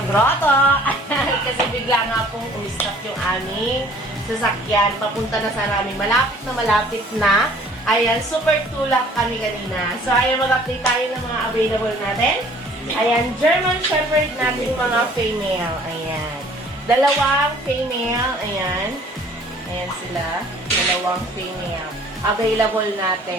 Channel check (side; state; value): both; normal; correlation 0.53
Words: grotto. Kasi bigla nga pong umistop yung aming sasakyan. Papunta na sa namin. Malapit na. Ayan, super tulak kami kanina. So, ayan, mag-update tayo ng mga available natin. Ayan, German Shepherd natin mga female. Ayan. Dalawang female. Ayan. Ayan sila. Dalawang female. Available